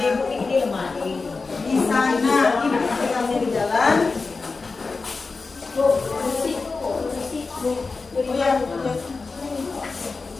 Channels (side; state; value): right; quieter; 4.1 dB